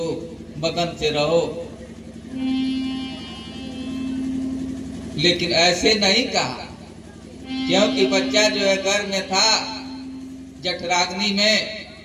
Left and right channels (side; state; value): both; identical; correlation 1.00